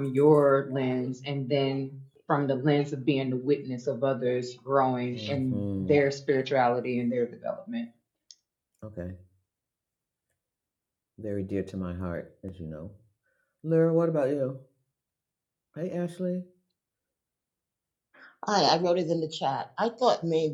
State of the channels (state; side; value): identical; both; correlation 1.00